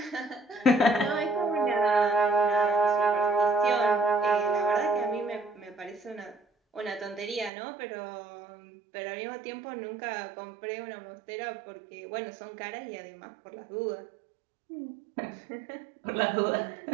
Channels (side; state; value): left; drops out; at 7.5 s